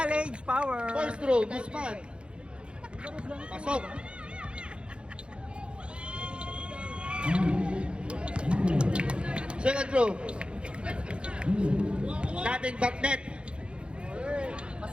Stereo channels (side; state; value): left; late; 0.056 ms